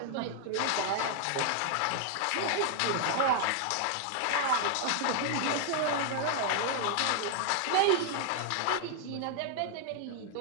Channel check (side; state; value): both; different; correlation 0.00